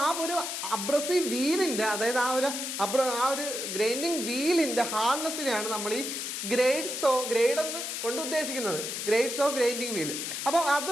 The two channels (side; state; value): left; noise; hiss, 4 dB below the sound